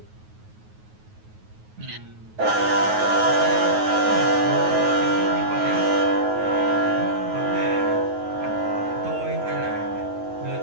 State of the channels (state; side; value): late; left; 9.4 ms